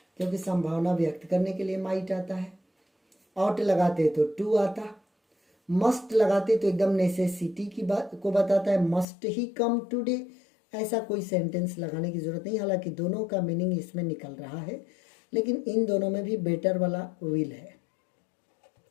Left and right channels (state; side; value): drops out; right; at 9.1 s